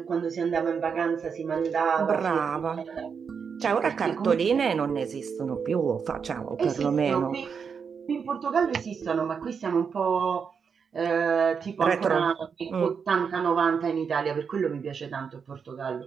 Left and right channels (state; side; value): quieter; left; 6.3 dB